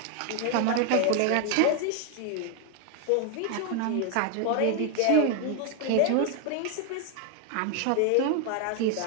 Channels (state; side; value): different; both; correlation 0.01